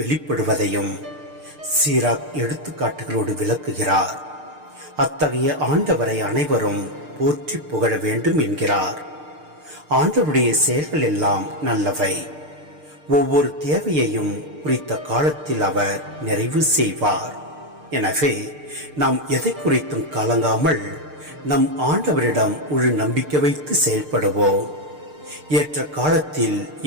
சீராக் எடுத்துக்காட்டுகளோடு விளக்குகிறார். அத்தகைய ஆண்டவரை அனைவரும் போற்றி புகழ வேண்டும் என்கிறார். ஆண்டவருடைய செயல்கள் எல்லாம் நல்லவை. ஒவ்வொரு தேவையையும் குறித்த காலத்தில் அவர் நிறைவு செய்வார். எனவே நாம் எதை குறித்தும் கலங்காமல் நம் ஆண்டவரிடம் முழு நம்பிக்கை வைத்து செயல்படுவோம். ஏற்ற காலத்தில்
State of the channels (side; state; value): left; late; 6.6 ms